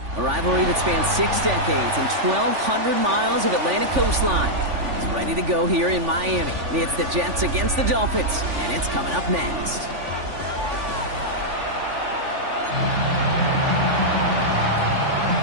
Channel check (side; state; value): left; late; 3.5 ms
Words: A rivalry that spans 6 decades and 1,200 miles of Atlantic coastline is ready to go here in Miami. It's the Jets against the Dolphins, and it's coming up next.